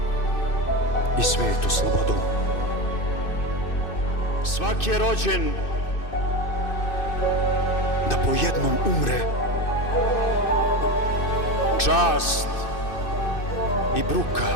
i svetu slobodu. Svak je rođen da po jednom umre, čast i bruka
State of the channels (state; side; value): late; right; 2.6 ms